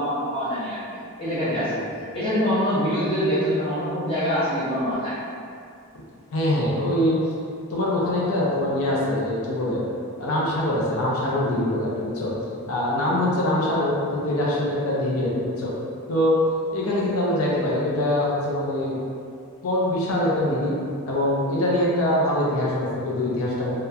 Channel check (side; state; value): both; normal; correlation 0.29